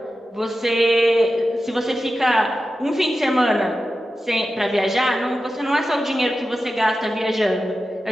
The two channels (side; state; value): both; normal; correlation 0.92